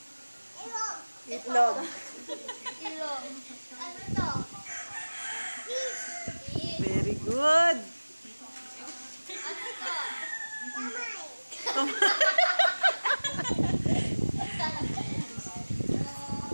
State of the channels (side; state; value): both; inverted; correlation -1.00